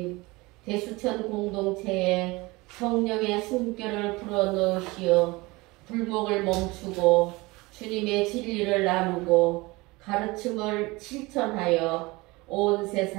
대수천 공동체에 성령의 숨결을 불어넣으시어 불목을 멈추고 주님의 진리를 나누고 가르침을 실천하여 온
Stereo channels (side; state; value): left; quieter; 23.0 dB